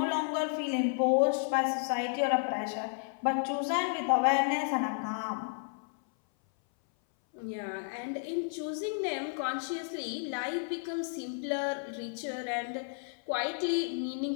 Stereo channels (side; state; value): right; silent; 56 dB below the other